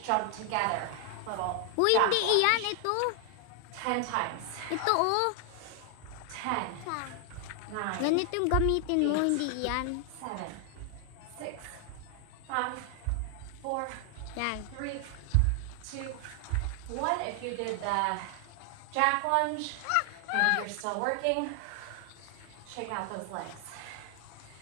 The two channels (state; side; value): different; both; correlation 0.00